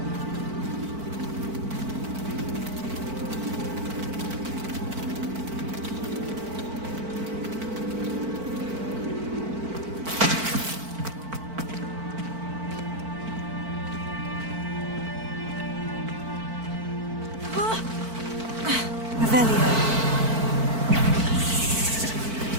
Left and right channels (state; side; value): late; left; 4.5 ms